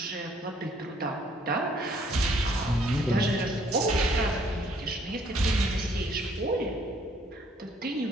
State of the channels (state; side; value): normal; both; correlation 0.63